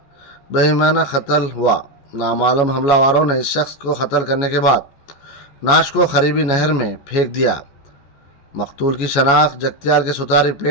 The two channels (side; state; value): right; late; 14 ms